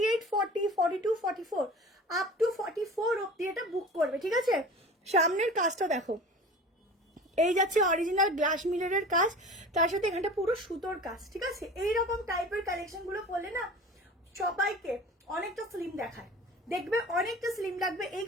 40, 42, 44, আপ টু 44 অব্দি এটা বুক করবে, ঠিক আছে। সামনের কাজটা দেখো, এই যাচ্ছে অরিজিনাল গ্লাস মিররের কাজ, তার সাথে এখানটা পুরো সুতোর কাজ, ঠিক আছে। এইরকম টাইপের কালেকশন গুলো পরলে না সবাইকে অনেকটা স্লিম দেখায়, দেখবে অনেকটা স্লিম লাগবে এই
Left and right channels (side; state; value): both; normal; correlation 0.39